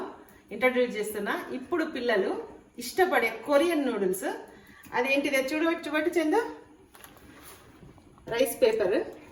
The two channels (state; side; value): identical; both; correlation 1.00